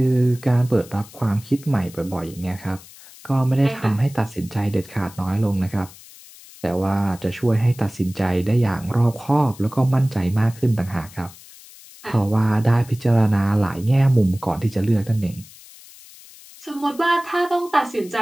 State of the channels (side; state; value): left; noise; hiss, 21 dB below the sound